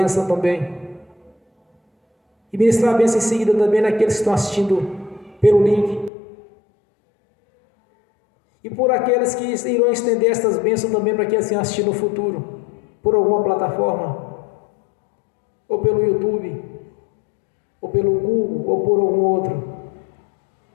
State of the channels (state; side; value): drops out; right; at 6.1 s